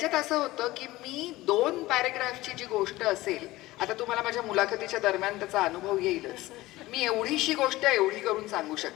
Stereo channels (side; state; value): right; quieter; 18.2 dB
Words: असं होतं की मी 2 पॅरेग्राफची जी गोष्ट असेल, आता तुम्हाला माझ्या मुलाखतीच्या दरम्यान त्याचा अनुभव येईलच, मी एवढीशी गोष्ट एवढी करून सांगू